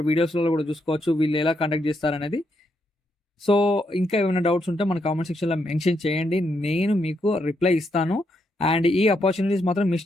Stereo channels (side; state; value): both; normal; correlation 0.79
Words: వీడియోస్లో కూడా చూసుకోవచ్చు వీళ్ళు ఎలా కండక్ట్ చేస్తారనేది. సో ఇంకా ఏమైనా డౌట్స్ ఉంటే మన కామెంట్ సెక్షన్లో మెన్షన్ చేయండి, నేను మీకు రిప్లై ఇస్తాను. అండ్ ఈ ఆపర్చునిటీస్ మాత్రం